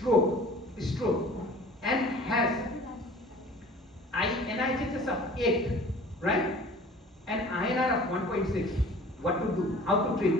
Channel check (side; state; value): both; normal; correlation 0.46